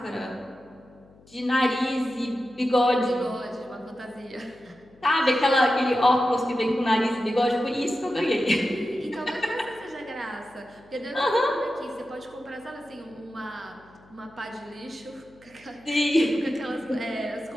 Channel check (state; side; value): noise; left; hum, 27 dB below the sound